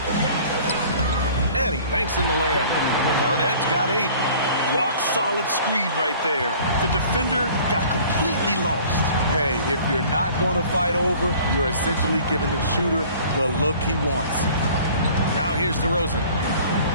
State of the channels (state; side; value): inverted; both; correlation -0.49